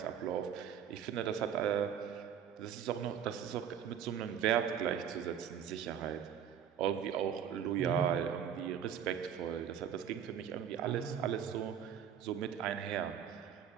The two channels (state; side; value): quieter; left; 8.6 dB